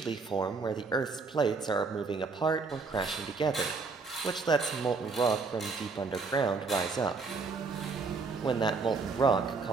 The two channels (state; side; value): quieter; left; 4.4 dB